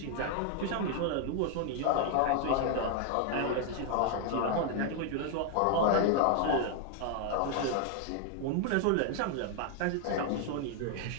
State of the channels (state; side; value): different; both; correlation 0.00